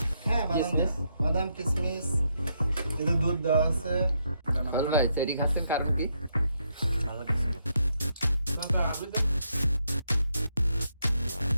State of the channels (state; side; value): inverted; both; correlation -0.78